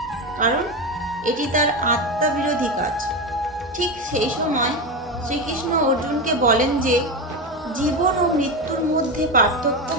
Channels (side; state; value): both; normal; correlation 0.16